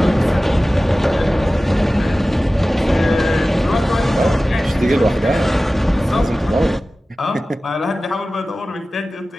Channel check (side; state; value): both; normal; correlation 0.96